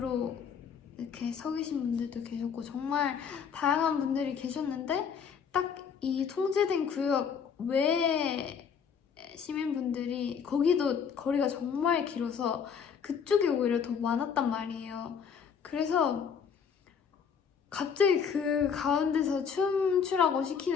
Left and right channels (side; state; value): right; quieter; 6.9 dB